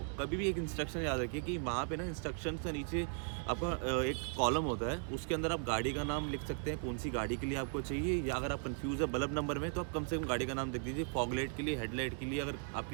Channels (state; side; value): silent; left; 53 dB below the other